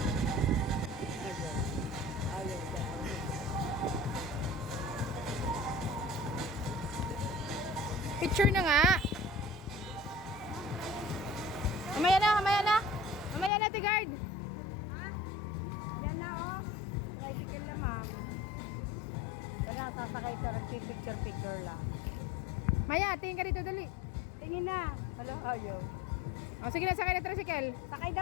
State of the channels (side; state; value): right; drops out; at 13.5 s